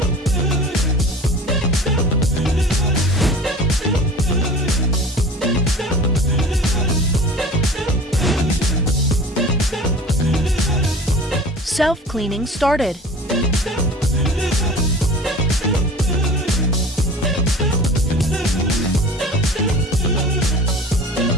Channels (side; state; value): both; normal; correlation 0.40